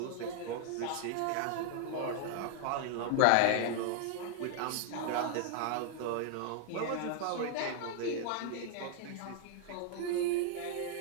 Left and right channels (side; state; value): both; different; correlation 0.00